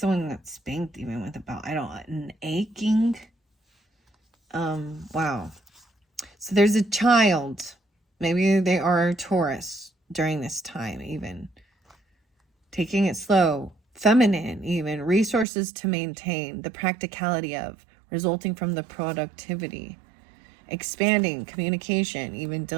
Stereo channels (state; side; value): drops out; left; at 15.5 s